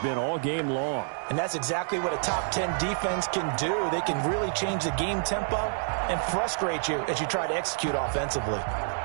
all game long. And that's exactly what a top 10 defense can do. They can really change the game tempo and frustrate you as you try to execute offensively.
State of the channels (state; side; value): silent; left; digital silence